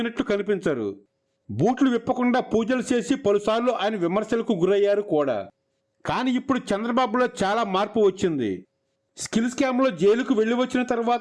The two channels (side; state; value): both; identical; correlation 1.00